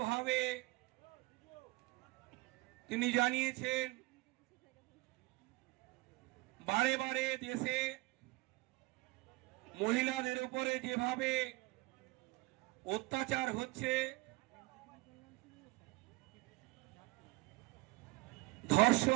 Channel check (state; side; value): quieter; left; 22.2 dB